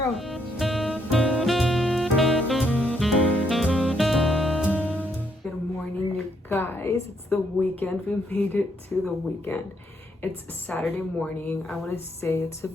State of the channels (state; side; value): normal; both; correlation 0.73